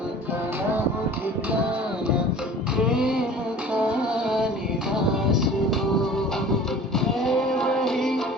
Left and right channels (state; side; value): normal; both; correlation 0.44